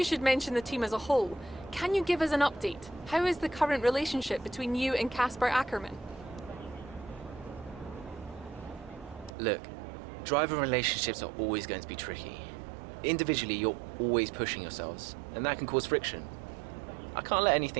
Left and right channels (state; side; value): drops out; left; at 9.3 s